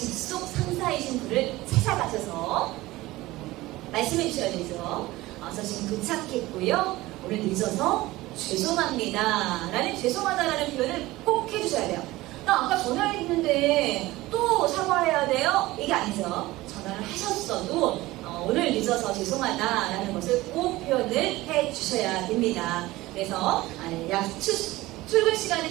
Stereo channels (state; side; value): quieter; left; 18.6 dB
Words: 상사이신 분을 찾아가셔서 말씀해 주셔야 되죠. 저 지금 도착했고요, 오늘 늦어서 죄송합니다 라는 죄송하다라는 표현을 꼭 해주셔야 돼요. 나 아까 전화했는데 또 사과해야 돼요? 이게 아니죠. 전화를 하셨어도 오늘 늦어서 죄송하다라는 것을 꼭 표현을 해주셔야 됩니다. 그래서 출근